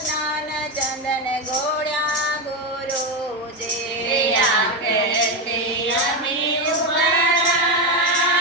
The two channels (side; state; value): both; normal; correlation 0.12